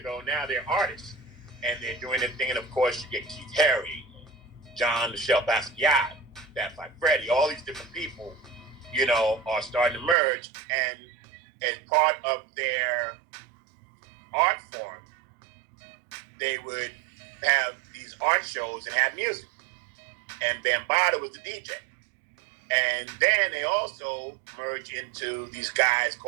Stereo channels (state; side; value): drops out; left; at 10.2 s